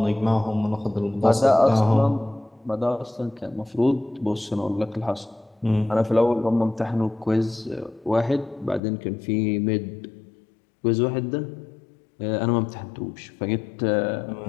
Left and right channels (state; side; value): drops out; right; at 8.8 s